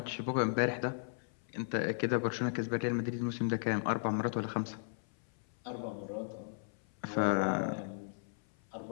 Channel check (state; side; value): silent; right; 54 dB below the other